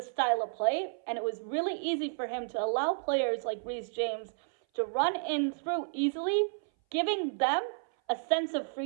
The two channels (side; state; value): left; silent; 57 dB below the other